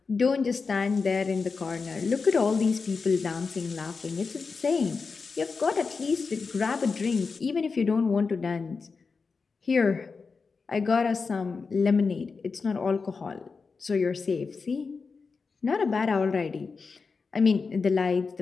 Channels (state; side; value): quieter; right; 4.7 dB